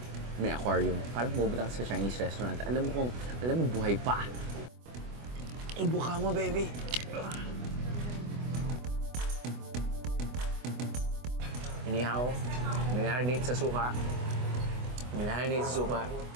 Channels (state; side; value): late; left; 24 ms